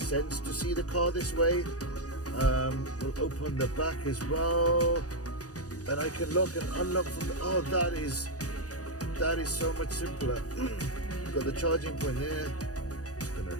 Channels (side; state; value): right; late; 0.67 ms